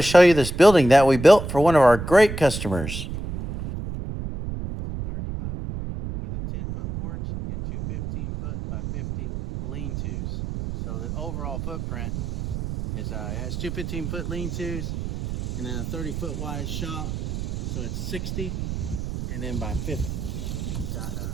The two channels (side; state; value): right; noise; rumble, 5 dB below the sound